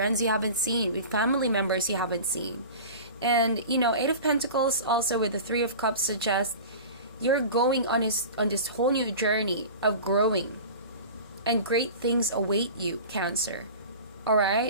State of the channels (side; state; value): both; inverted; correlation -0.36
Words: you haven't seen, with family members you haven't seen. And you know, Eight of Pentacles also with the Three of Cups suggests you're going on this whole new journey of growing, and great things await you, Cancer. All